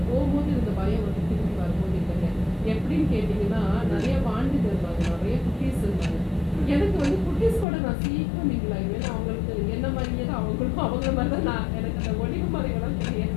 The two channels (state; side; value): drops out; right; at 7.7 s